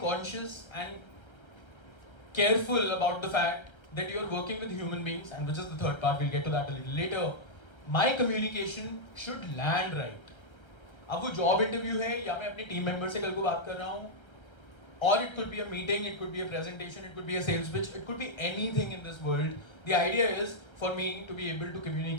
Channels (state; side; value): late; right; 1.3 ms